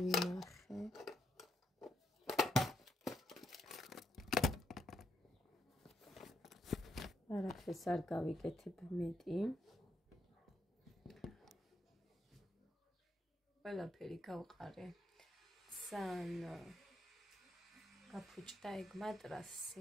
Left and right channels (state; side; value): normal; both; correlation 0.78